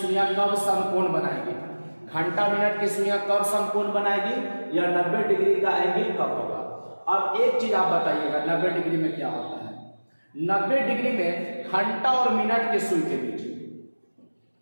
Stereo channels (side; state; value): both; inverted; correlation -1.00